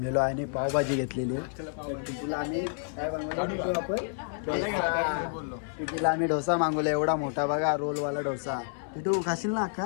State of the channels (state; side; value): silent; right; 58 dB below the other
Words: आहे आणि पावभाजी घेतलेली आहे. टिटूला आम्ही काय बनवलं? आपण टिटूला आम्ही डोसा मागवला. एवढा मोठा बघा रोलवाला डोसा. टिटू खाशील ना